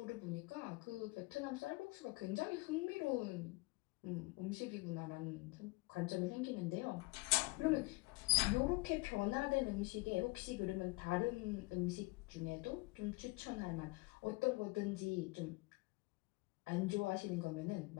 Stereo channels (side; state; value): right; quieter; 24.6 dB